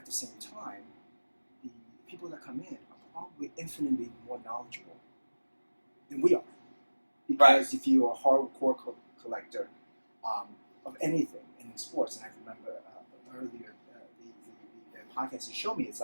the same time, the people that come in are probably infinitely more knowledgeable than we are. Because if you're a hardcore collector of anything in sports, and I remember earlier the podcast you showed me, it's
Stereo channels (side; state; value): both; inverted; correlation -1.00